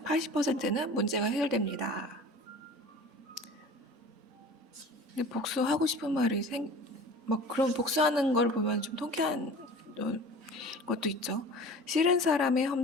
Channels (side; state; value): both; normal; correlation 0.40